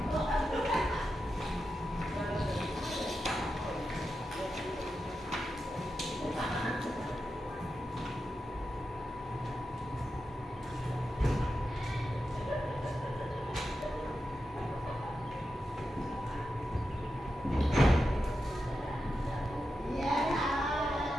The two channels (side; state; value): both; normal; correlation 0.89